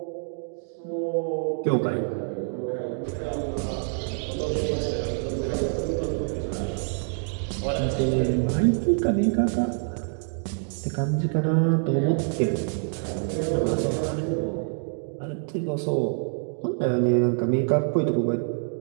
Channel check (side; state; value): left; silent; 61 dB below the other